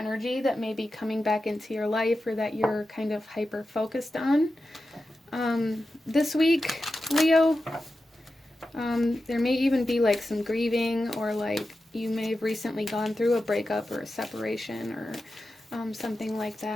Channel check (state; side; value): normal; both; correlation 0.92